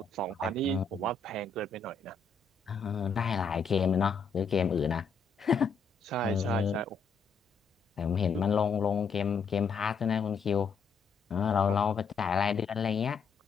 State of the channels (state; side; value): quieter; right; 4.9 dB